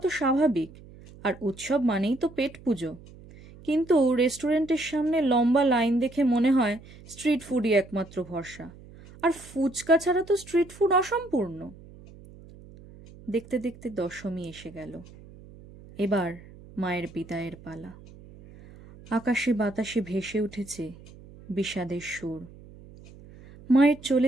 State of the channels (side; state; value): right; noise; hum, 20 dB below the sound